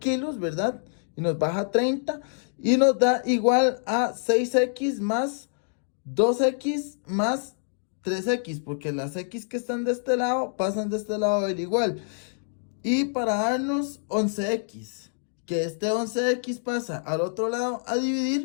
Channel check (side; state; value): right; silent; digital silence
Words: ¿verdad? Y nos baja 30. Y nos da igual a 6X más 2X más 3X. Porque las X que están de este lado pasan de este lado del igual. Y para darnos 11X, que este 11X pasa al otro lado a